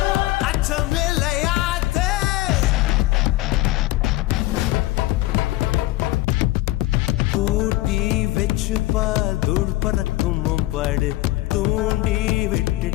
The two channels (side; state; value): right; quieter; 18.0 dB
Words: அச்சமில்லையாத்தே. கூட்டி வச்சுப்பா தூள் பறக்கும் பாடு, தூண்டி